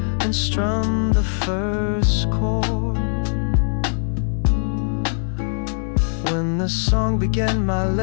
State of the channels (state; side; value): silent; right; digital silence